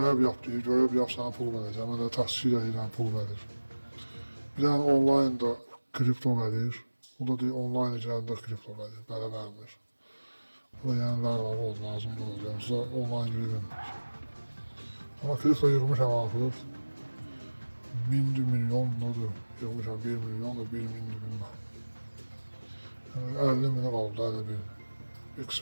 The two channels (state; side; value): inverted; both; correlation -1.00